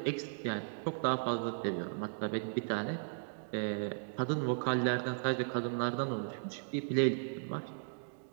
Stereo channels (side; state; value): left; silent; digital silence